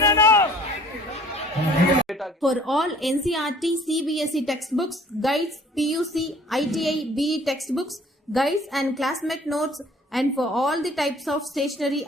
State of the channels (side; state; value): both; normal; correlation 0.53